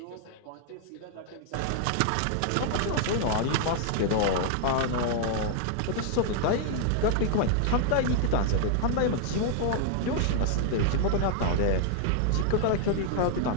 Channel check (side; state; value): both; different; correlation 0.00